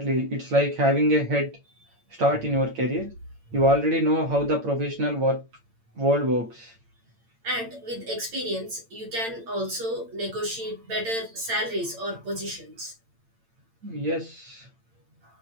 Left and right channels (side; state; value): left; late; 8.8 ms